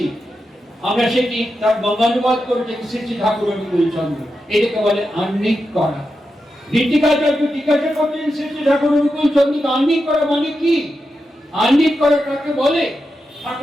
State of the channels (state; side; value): normal; both; correlation 0.88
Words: আমরা সেটি তার বঙ্গানুবাদ করেছেন শ্রী শ্রী ঠাকুর অনুকূল চন্দ্র। এটাকে বলে আহ্নিক করা। ঋত্বিকাচার্য জিজ্ঞাসা করছেন শ্রী শ্রী ঠাকুর অনুকূল চন্দ্রকে, আহ্নিক করা মানে কি? আহ্নিক করা কাকে বলে?